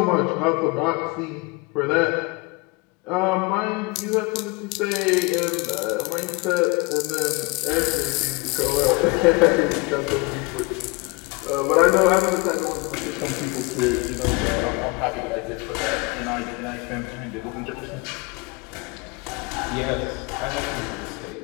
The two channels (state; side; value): quieter; right; 27.2 dB